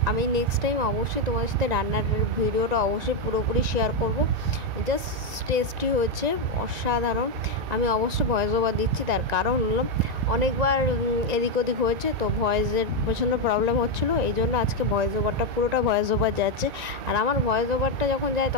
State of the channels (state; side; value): late; left; 1.9 ms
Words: আমি নেক্সট টাইম অবশ্যই তোমাদের সাথে রান্নার ভিডিওটা অবশ্যই পুরোপুরি শেয়ার করব। জাস্ট টেস্টি হয়েছে, অসাধারণ। আমি অবশ্যই ভয়েস ওভার দিচ্ছি, তার কারণ হলো অনেকবার এদিক ওদিক হয়েছে, তো ভয়েসের প্রচণ্ড প্রবলেম হচ্ছিলো, এই জন্য আজকে ভয়েস ওভারটা পুরোটা ভয়েস ওভার যাচ্ছে। আর আমার ভয়েস ওভারটা যখন যায়